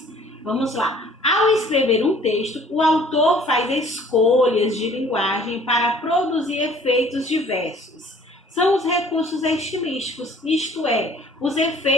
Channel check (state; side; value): normal; both; correlation 0.54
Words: vamos lá. Ao escrever um texto, o autor faz escolhas de linguagem para produzir efeitos diversos. São os recursos estilísticos, isto é, os